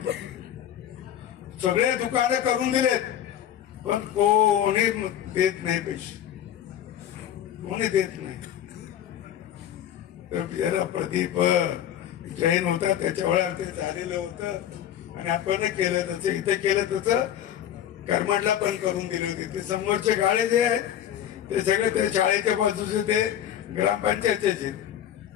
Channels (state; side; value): quieter; right; 10.6 dB